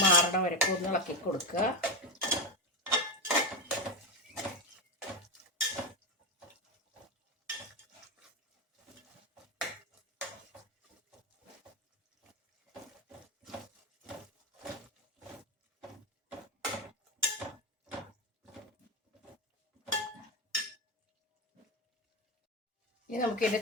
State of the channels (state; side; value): normal; both; correlation 0.12